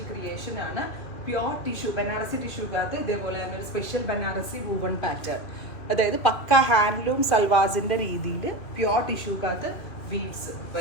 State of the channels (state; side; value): late; right; 2.9 ms